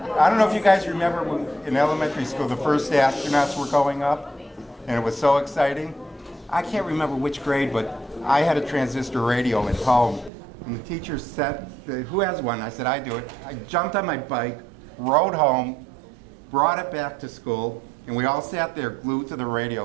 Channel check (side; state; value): left; drops out; at 10.3 s